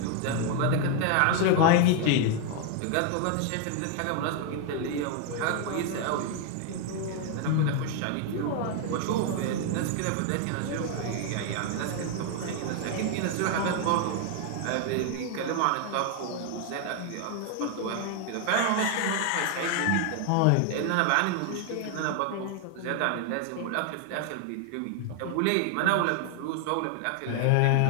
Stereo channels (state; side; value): different; both; correlation 0.00